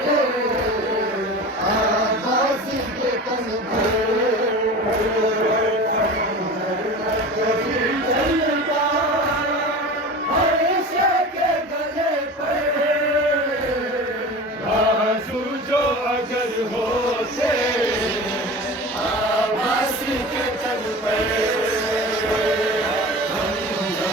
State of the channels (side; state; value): both; normal; correlation 0.34